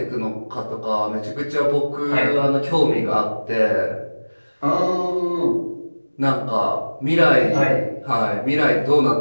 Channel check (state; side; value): inverted; both; correlation -1.00